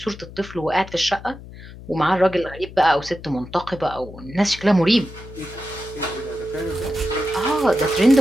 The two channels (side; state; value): left; noise; hum, 16 dB below the sound